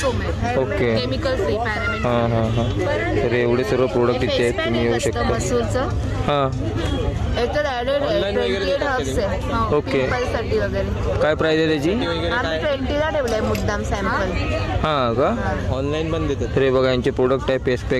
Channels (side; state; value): both; identical; correlation 1.00